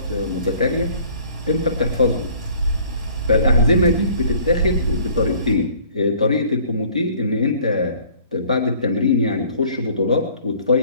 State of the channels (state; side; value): inverted; both; correlation -0.55